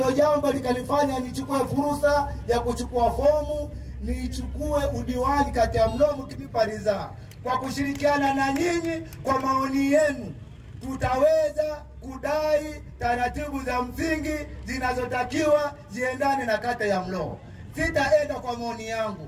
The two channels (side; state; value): both; identical; correlation 1.00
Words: jambo likanifanya nichukue fursa ya kuchukua fomu, nichukue udiwani kata ya Mlowo mkinipa ridhaa. Kwa kushirikiana na nyinyi, kwa maoni yenu, tutaweza kudai taratibu za msingi zinazotakiwa ziendane na kata ya Mlowo. Sitaenda kwa maoni